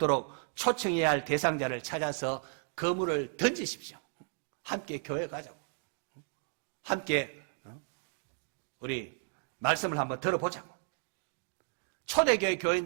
초청해야 할 대상자를 찾아서 그물을 던지십시오. 함께 교회 가자고. 함께 우리 말씀을 한번 들어보자고. 초대교회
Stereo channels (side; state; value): left; silent; 55 dB below the other